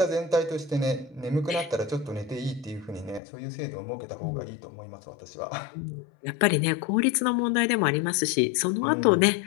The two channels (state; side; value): drops out; right; at 3.2 s